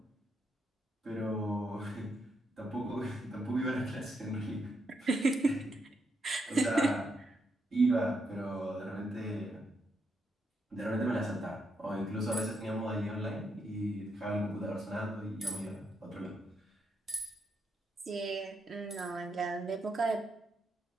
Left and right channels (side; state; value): both; normal; correlation 0.80